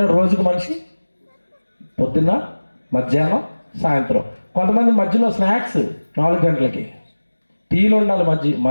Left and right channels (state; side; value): inverted; both; correlation -1.00